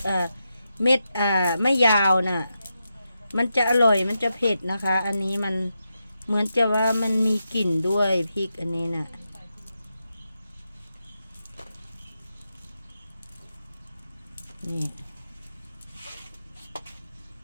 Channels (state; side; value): inverted; both; correlation -0.87